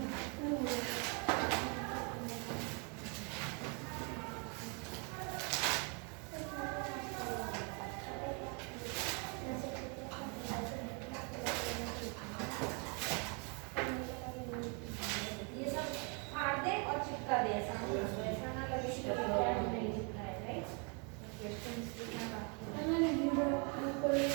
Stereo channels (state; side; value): quieter; left; 35.2 dB